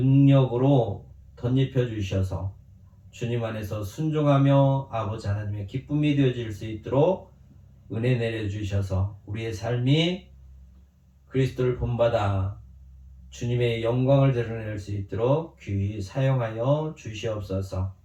덧입혀 주셔서 주님 안에서 순종하며 아버지 하나님의 기쁨이 되어질 수 있도록 은혜 내려주셔서 우리의 삶이 그리스도를 본받아 주님의 영광을 드러낼 수 있도록 귀히 사용하여 주시옵소서.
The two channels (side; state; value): both; identical; correlation 1.00